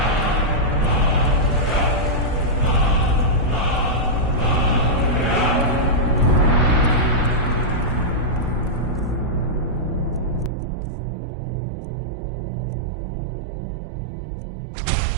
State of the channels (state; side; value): drops out; left; at 10.5 s